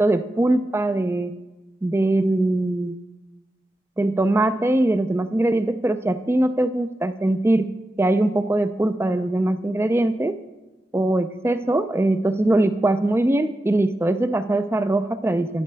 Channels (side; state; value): both; normal; correlation 0.90